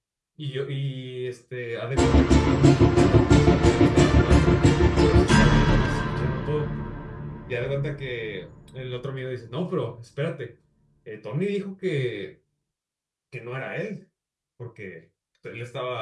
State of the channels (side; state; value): both; identical; correlation 1.00